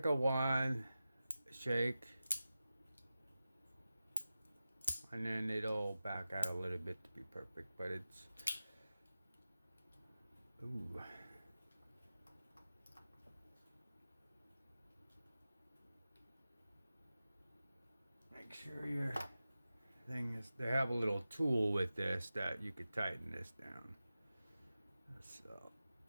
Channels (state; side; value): inverted; both; correlation -0.94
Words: one shake, and then it'll back out a little bit to be perfect. But it's ooh. Make sure your thing is. They have a little tool with this that you could tighten this down. So